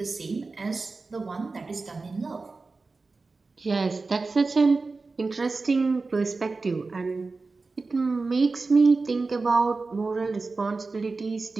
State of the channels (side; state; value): left; quieter; 3.9 dB